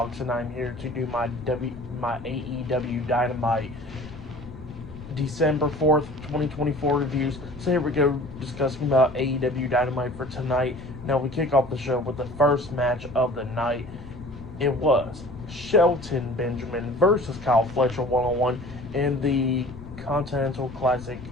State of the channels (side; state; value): left; noise; rumble, 15 dB below the sound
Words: and I'm here to do my AEW Dynamite December 4th, 2024 reviews. So here we go, discussing about AEW Dynamite for tonight. Now we kick off the show with the first match of the night. It was Shelton Benjamin versus Kyle Fletcher one-on-one in the Continental Classic